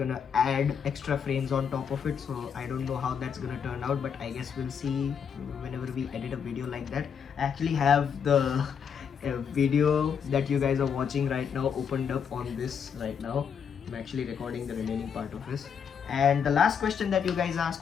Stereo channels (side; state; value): right; quieter; 7.2 dB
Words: add extra frames on top of it, so I don't know how that's gonna turn out, but I guess we'll see whenever we edit a video like that. I actually have the video that you guys are watching right now opened up on this right now. I'm actually recording the remaining part of this. And the last question that you guys